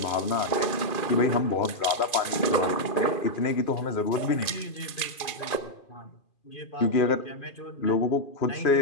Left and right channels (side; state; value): right; late; 2.4 ms